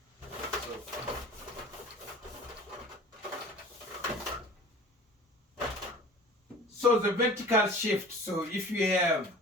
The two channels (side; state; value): both; normal; correlation 0.43